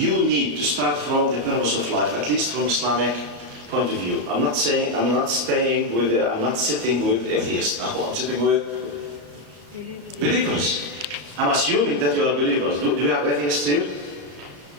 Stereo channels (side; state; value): left; late; 34 ms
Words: need to start from the purpose of life, at least from Islamic point of view. I'm not sitting with atheists now. I'm sitting with believers. I'm assuming that you are believers. Do you have atheists here?